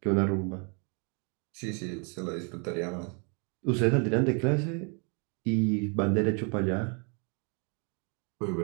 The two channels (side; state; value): left; quieter; 36.3 dB